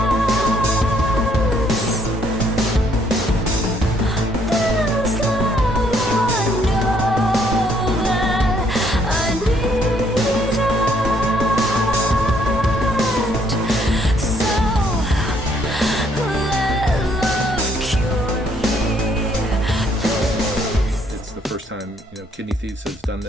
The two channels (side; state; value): both; normal; correlation 0.67